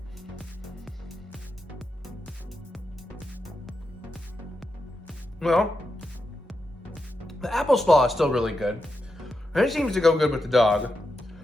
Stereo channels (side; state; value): both; normal; correlation 0.87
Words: Well, the apple slaw is still really good. And it seems to go good with the dog.